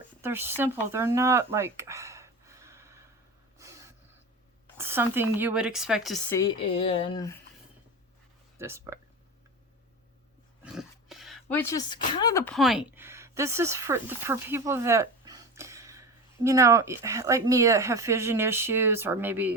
they're simple. They're not like something you would expect to see in this book, which is kind of the point. This is for people that, you know, like me, that have vision issues, or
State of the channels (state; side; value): normal; both; correlation 0.27